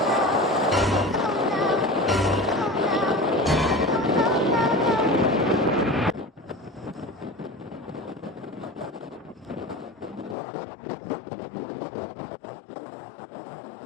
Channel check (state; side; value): drops out; right; at 10.4 s